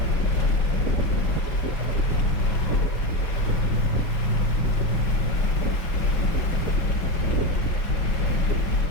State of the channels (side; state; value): right; late; 5.8 ms